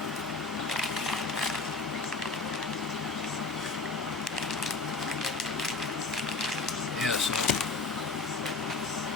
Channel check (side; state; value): right; quieter; 3.9 dB